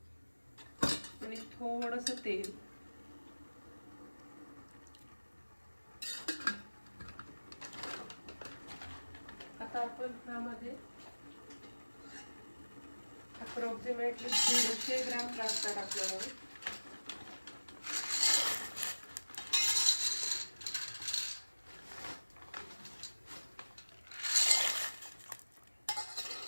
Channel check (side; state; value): both; inverted; correlation -1.00